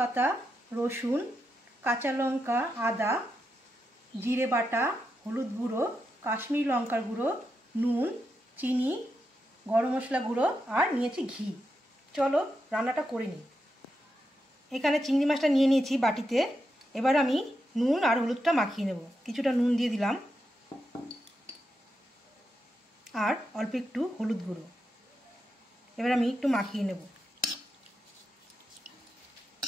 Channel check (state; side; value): normal; both; correlation 0.86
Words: রসুন, কাঁচা লঙ্কা, আদা, জিরে বাটা, হলুদ গুঁড়ো, কাশ্মীরি লঙ্কার গুঁড়ো, নুন, চিনি, গরম মশলা গুঁড়ো আর নিয়েছি ঘি। চলো রান্নাটা করে নিই। এখানে চিংড়ি মাছটা নিয়ে নিয়েছি বাটিতে। এবার আমি নুন আর হলুদটা মাখিয়ে নেব। কিছুটা নুন দিয়ে দিলাম আর অল্প একটু হলুদ গুঁড়ো। এবার আমি একটু মাখিয়ে নেব।